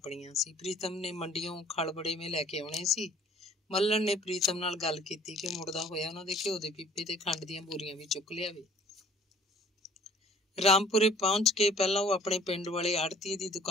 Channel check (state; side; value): normal; both; correlation 0.54